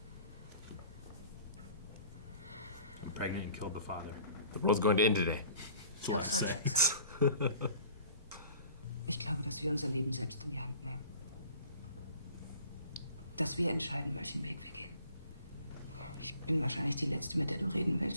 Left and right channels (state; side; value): inverted; both; correlation -0.49